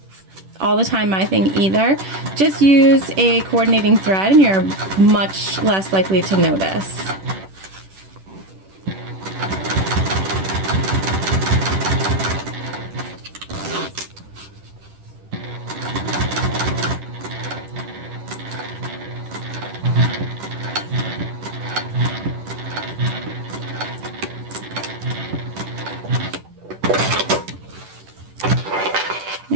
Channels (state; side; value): late; left; 10 ms